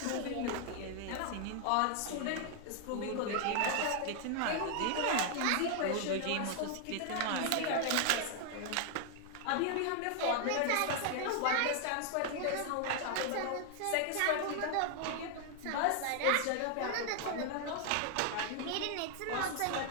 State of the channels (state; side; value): different; both; correlation 0.00